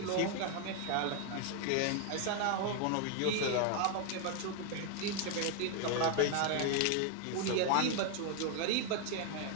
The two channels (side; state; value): both; different; correlation 0.00